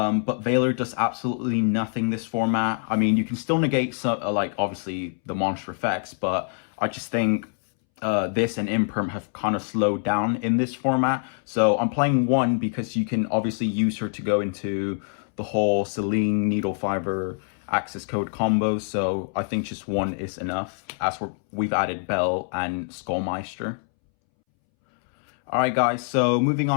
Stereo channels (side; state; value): right; silent; 62 dB below the other